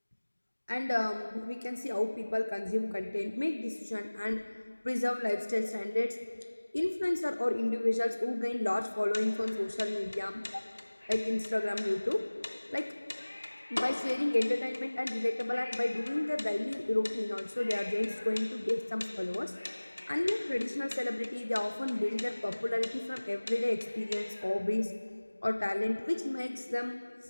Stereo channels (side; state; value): both; inverted; correlation -1.00